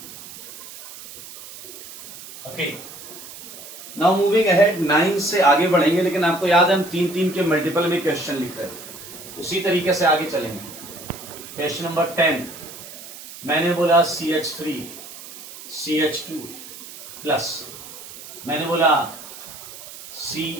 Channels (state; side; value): noise; right; hiss, 14 dB below the sound